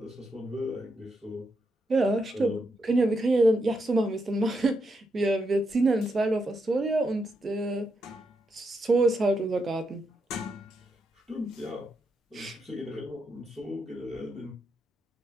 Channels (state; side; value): normal; both; correlation 0.82